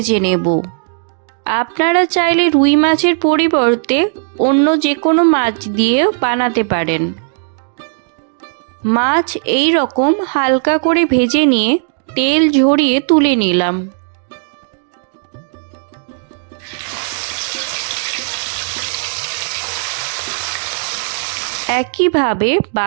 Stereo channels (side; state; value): left; silent; digital silence